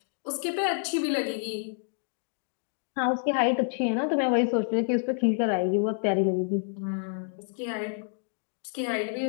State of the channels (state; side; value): silent; right; 59 dB below the other